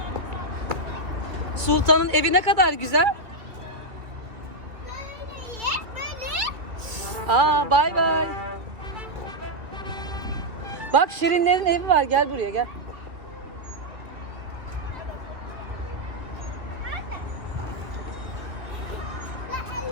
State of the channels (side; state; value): left; late; 2.6 ms